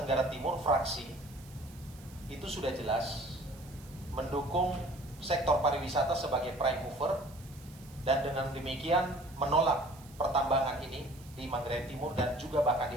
Tenggara Timur fraksi itu sudah jelas mendukung sektor pariwisata sebagai prime mover, dan dengan demikian menolak pertambangan ini di Manggarai Timur dan juga bahkan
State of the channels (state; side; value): noise; right; hiss, 22 dB below the sound